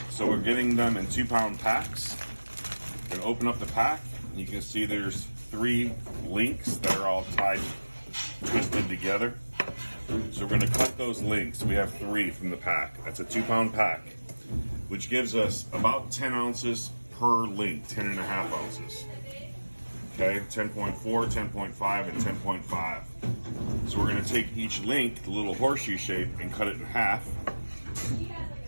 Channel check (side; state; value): both; inverted; correlation -1.00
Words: So we're getting them in 2-pound packs. We're gonna open up the pack. You can see there's 3 links that are all tied, twisted together. So we're gonna cut those links. We have 3 from the pack. That's a 2-pound pack, which gives us about 10 ounces per link, 10.5 ounces. Okay, 10.4, 10.5, and 10.5. So we're gonna take each link, the little horseshoe shape, and cut it in half.